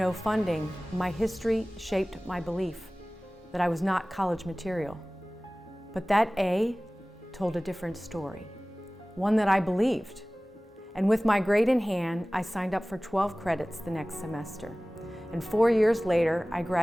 funding, my history shaped my belief that I was not college material. But that A told a different story, one that I believed. And with my grade in hand, I signed up for 12 credits the next semester. And 4 years later, I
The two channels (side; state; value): both; normal; correlation 0.98